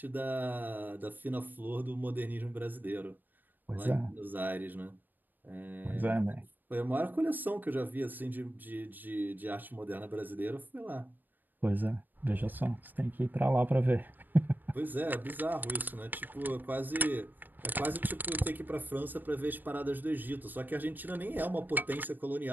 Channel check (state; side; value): late; left; 0.090 ms